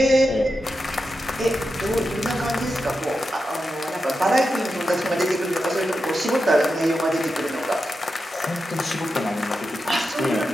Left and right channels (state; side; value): normal; both; correlation 0.89